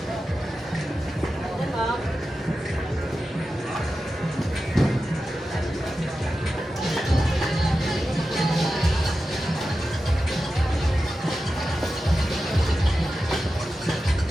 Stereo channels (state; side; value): normal; both; correlation 0.92